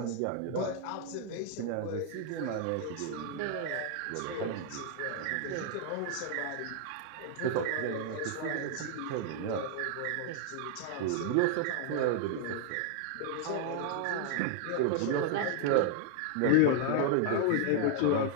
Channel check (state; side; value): different; both; correlation 0.00